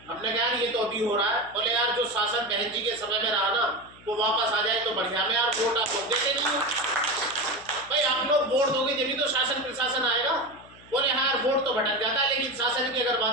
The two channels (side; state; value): left; noise; hum, 24 dB below the sound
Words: हमने कहा ये तो अभी हो रहा है। बोले यार जो शासन बहन जी के समय में रहा ना वो वापस आ जाए तो बढ़िया। में यार वोट आप लोग देते नहीं हो भाई, आप लोग वोट दोगे जब भी तो शासन प्रशासन आएगा। बोले हाँ यार वोट तो भटक जाता है, लेकिन शासन की अगर